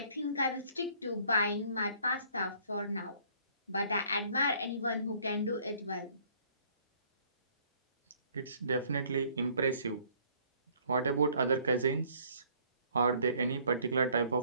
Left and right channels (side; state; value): both; inverted; correlation -0.60